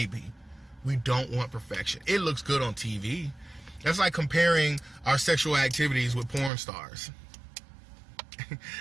we don't want perfection. It looks good on TV. That's like comparing our sexual activities with porn stars.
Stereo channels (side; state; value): left; drops out; at 6.5 s